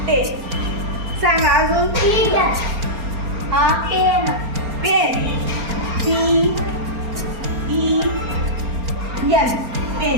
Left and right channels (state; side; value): late; left; 4.3 ms